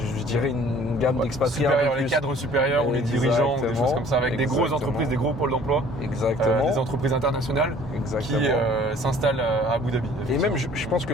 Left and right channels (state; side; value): normal; both; correlation 0.53